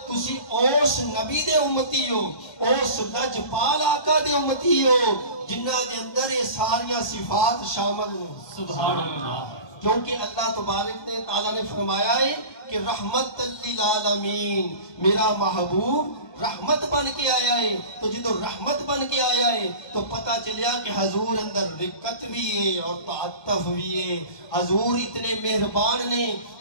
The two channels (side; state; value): right; late; 1.5 ms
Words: تسی اوس نبی دے امتی ہو, اوس لجپال آقا دے امتی ہو جنہ دے اندر یہ ساریاں صفات شامل ہوں. سبحان اللہ. کیونکہ اللہ تبارک نے تعالیٰ نے فرمایا ہے کہ رحمت للعالمین, میرا محبوب رحمت بن کے آیا ہے. تو جدو رحمت بن کے آیا ہے تو پتہ چلیا کہ حضور اندر رقت بھی ہے اور تعطف بھی ہے. حضور اتنے مہربان نے